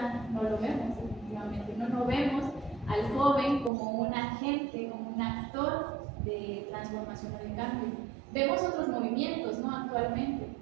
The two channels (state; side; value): drops out; left; at 3.7 s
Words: no lo vemos, efectivamente, no vemos al joven como un agente, como un actor de transformación o de cambio. Vemos otros movimientos, ¿no?, actualmente,